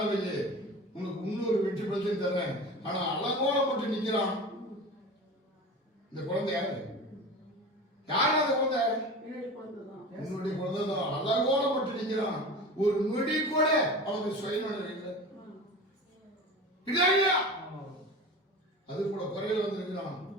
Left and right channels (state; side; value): normal; both; correlation 0.33